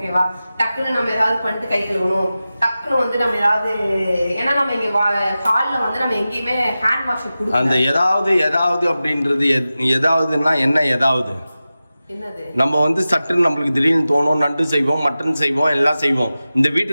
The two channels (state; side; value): inverted; both; correlation -0.95